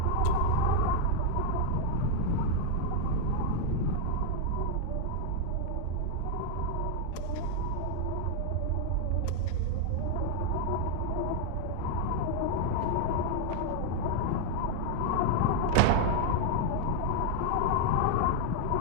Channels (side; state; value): both; different; correlation 0.00